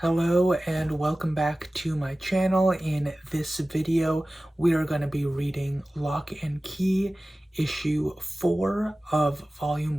Hello and welcome back to my channel. In this video, we are going to be reading Lock and Key, issue 4 of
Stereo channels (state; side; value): normal; both; correlation 0.96